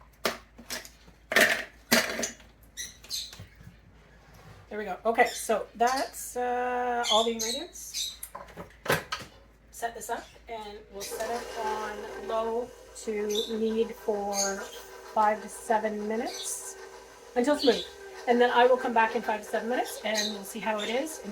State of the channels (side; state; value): both; identical; correlation 1.00